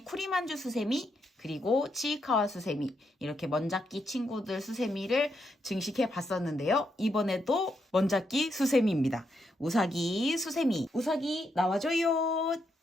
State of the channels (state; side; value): normal; both; correlation 0.80